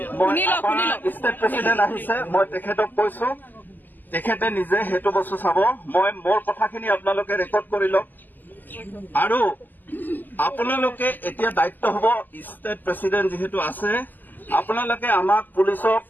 ষ্টেট প্ৰেচিডেণ্ট আহিছে মই তেখেতক কৈছো তেখেতে নিজে সেইটো বস্তু চাব মই মোৰ কথাখিনি আপোনালোকে ৰেকৰ্ড কৰি লওক আৰু আপোনালোকে এতিয়া দায়িত্ব হ'ব ষ্টেট প্ৰেচিডেণ্ট যিহেতু আছে আপোনালোকে আমাক পুলিচক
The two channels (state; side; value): late; right; 0.087 ms